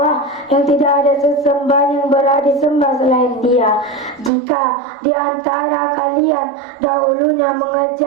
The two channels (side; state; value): left; drops out; at 4.3 s